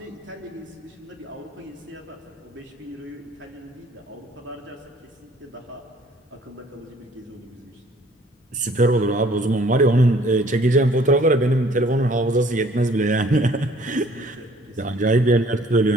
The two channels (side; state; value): both; normal; correlation 0.57